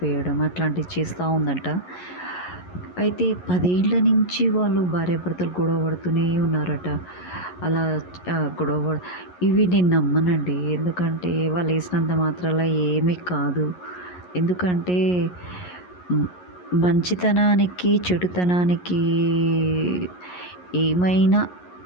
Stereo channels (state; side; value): late; right; 11 ms